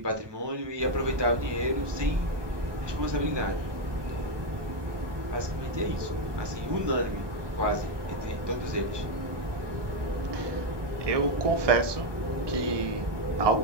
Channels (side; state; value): left; late; 1.2 ms